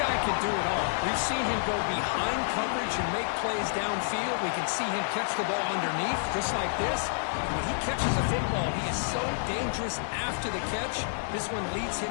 guy can do it all. We've seen him go behind coverage and make plays downfield. We can see him catch the ball underneath, just like this. When he catches a football, he is so dangerous after the catch. This one leads him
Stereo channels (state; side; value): silent; right; digital silence